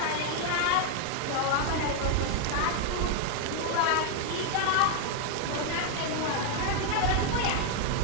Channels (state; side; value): different; both; correlation 0.00